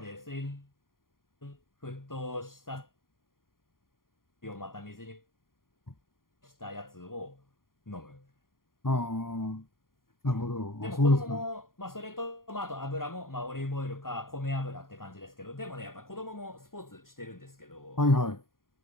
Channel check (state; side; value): late; right; 0.91 ms